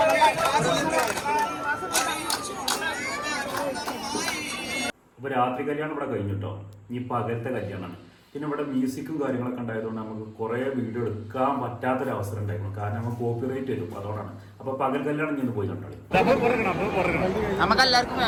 ഇപ്പോൾ രാത്രി കല്യാണം ഇവിടെ കഴിഞ്ഞിട്ടോ. ഇനി പകലത്തെ കല്യാണമാണ്. പിന്നെ ഇവിടെ മ്യൂസിക്കും കാര്യങ്ങളൊക്കെ ഉണ്ടായതുകൊണ്ട് നമുക്ക് കുറേ വീഡിയോ എടുക്കാൻ പറ്റാത്തൊരവസരം ഉണ്ടായിരുന്നു. കാരണം നമുക്ക് കോപ്പിറൈറ്റ് വരും. അതുകൊണ്ടാണ്. അപ്പോൾ പകൽ കല്യാണം ഇന്ന് പോയി കണ്ടോളി. നമുക്ക് എല്ലാവർക്കും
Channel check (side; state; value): both; identical; correlation 1.00